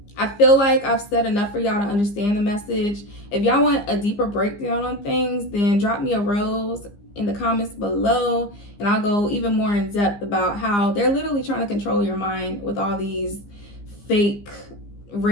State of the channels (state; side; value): late; right; 15 ms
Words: I feel like I've said enough for y'all to understand the message. If y'all want a deeper breakdown on things, then drop me a rose in the comments below, and I'll go even more in depth about how they're literally trying to control your mind with all these fake